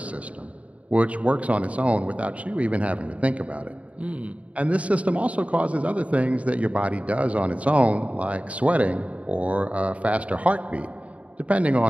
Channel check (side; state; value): left; late; 0.066 ms